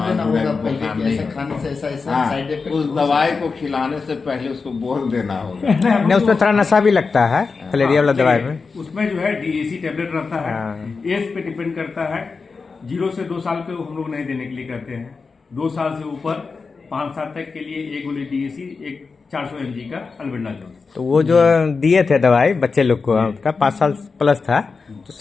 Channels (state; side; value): quieter; right; 4.6 dB